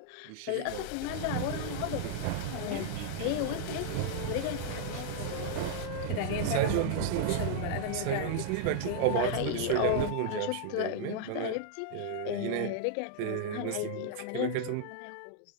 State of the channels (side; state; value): both; different; correlation -0.01